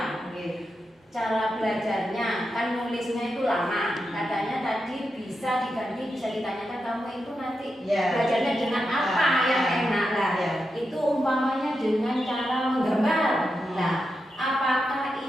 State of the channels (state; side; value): normal; both; correlation 0.87